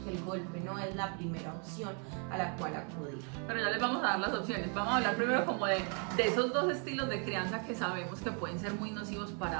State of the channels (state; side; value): quieter; left; 38.7 dB